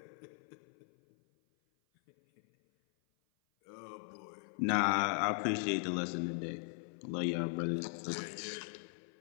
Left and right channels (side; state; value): right; silent; 52 dB below the other